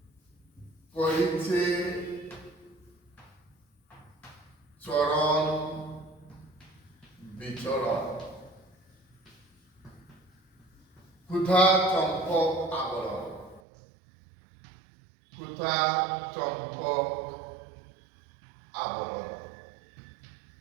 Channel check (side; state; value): left; drops out; at 13.6 s